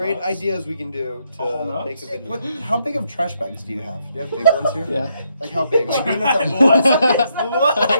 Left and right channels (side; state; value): both; inverted; correlation -0.76